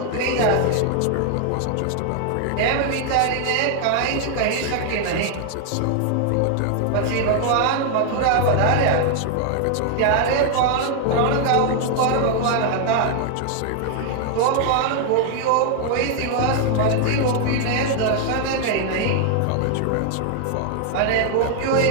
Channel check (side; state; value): both; different; correlation 0.00